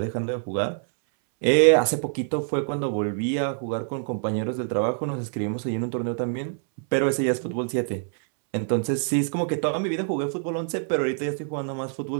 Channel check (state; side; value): silent; left; 61 dB below the other